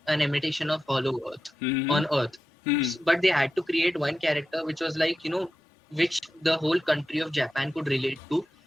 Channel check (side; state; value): both; normal; correlation 0.91